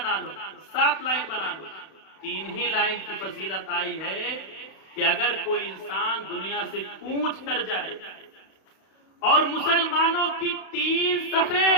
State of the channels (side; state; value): right; late; 32 ms